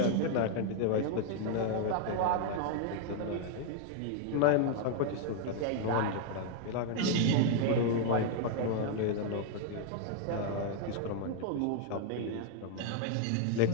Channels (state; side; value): different; both; correlation 0.00